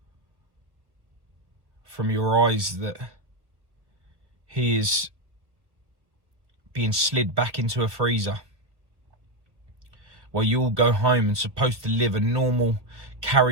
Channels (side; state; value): left; late; 1.3 ms